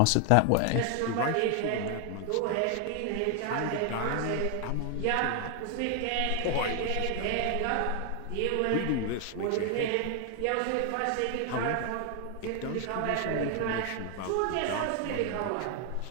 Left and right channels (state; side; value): different; both; correlation 0.00